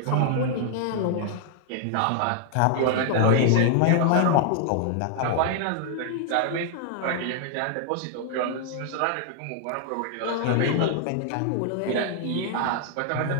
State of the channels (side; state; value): both; different; correlation -0.01